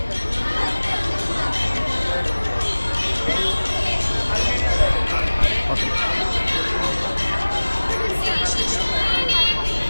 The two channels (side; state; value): both; inverted; correlation -1.00